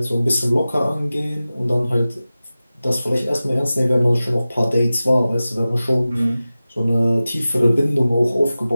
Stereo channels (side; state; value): both; inverted; correlation -0.96